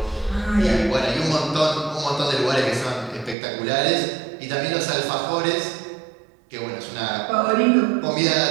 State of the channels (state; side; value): drops out; left; at 3.4 s